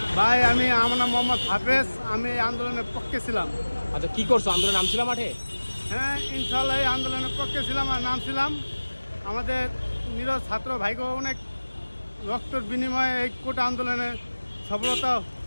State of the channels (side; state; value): both; inverted; correlation -1.00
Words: ভাই আমার নাম মোহাম্মদ হাফেজ, আমি এই আন্দোলনের পক্ষে ছিলাম। আচ্ছা, কি করছো? আন্দোলনে নামছিলাম মাঠে? হ্যাঁ, ইনশাল্লাহ এই আন্দোলনের পক্ষে ছিলাম আর নামছিলাম। আমাদের নিরজ ছাত্র ভাইকে অনেক রক্তের বিনিময়ে এই কোটা আন্দোলনে সফলতা